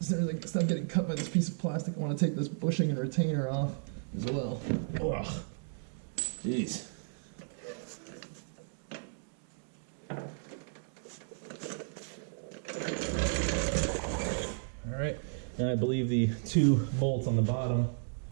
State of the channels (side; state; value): left; silent; digital silence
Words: as soon as I stop getting cut by this piece of plastic, I want to take this bushing and retainer off as well. Ugh. Jeez. All right, and I believe the 2 bolts on the bottom,